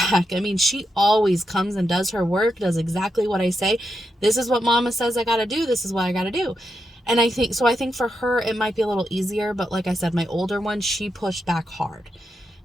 I mean, she always comes and does her work, does exactly what I say. This is what mama says I got to do. This is what I got to do. And I think for her, it might be a little easier. But like I said, my older one, she pushed back hard,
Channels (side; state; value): both; normal; correlation 0.85